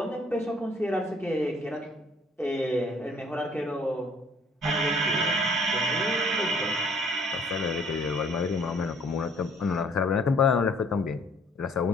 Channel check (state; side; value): normal; both; correlation 0.58